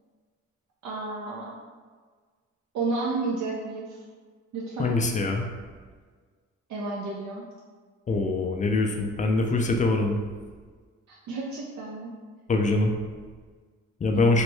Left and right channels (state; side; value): normal; both; correlation 0.50